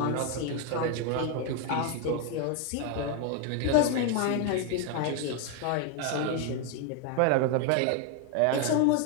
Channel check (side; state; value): both; different; correlation 0.01